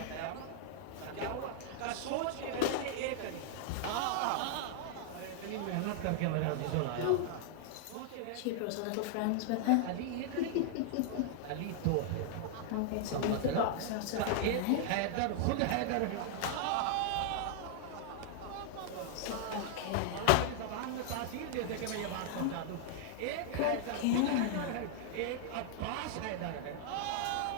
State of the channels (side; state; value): both; different; correlation 0.00